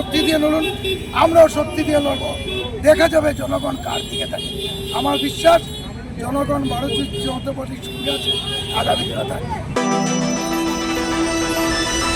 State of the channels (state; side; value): identical; both; correlation 1.00